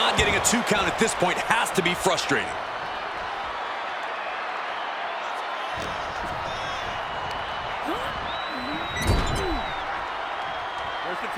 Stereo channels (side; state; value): both; identical; correlation 1.00